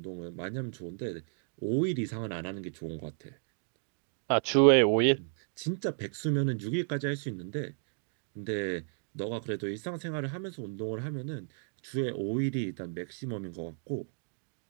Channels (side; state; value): left; silent; digital silence